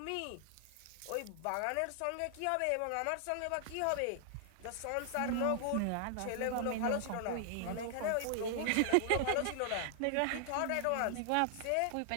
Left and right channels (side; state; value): both; different; correlation 0.00